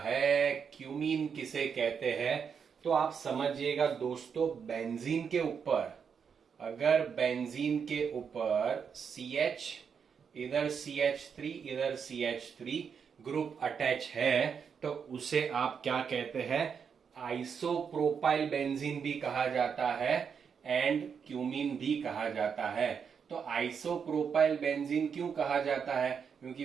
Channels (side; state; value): left; quieter; 6.7 dB